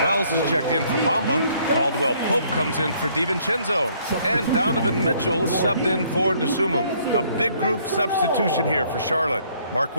Wells is checked in for Bamba. Caldwell Pope comes in for DiVincenzo. And Donovan Mitchell is subbed in for Dosunmu. A big group substitution here for Charlotte. Mark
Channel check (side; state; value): both; inverted; correlation -0.64